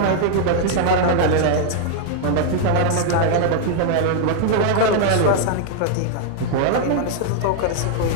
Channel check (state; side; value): different; both; correlation 0.00